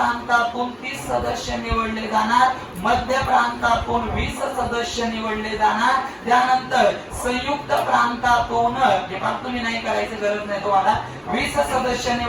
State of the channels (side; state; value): both; identical; correlation 1.00